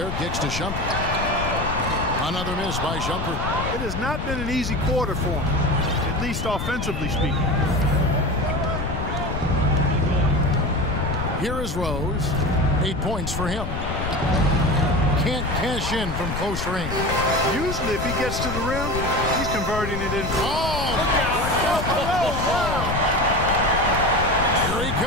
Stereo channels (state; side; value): noise; left; rumble, 4 dB below the sound